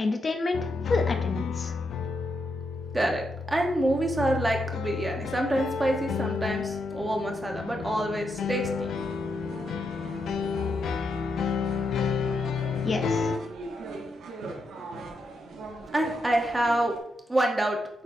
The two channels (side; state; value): both; normal; correlation 0.82